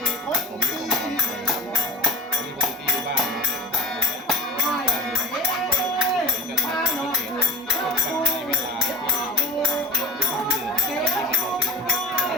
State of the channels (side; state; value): both; normal; correlation 0.35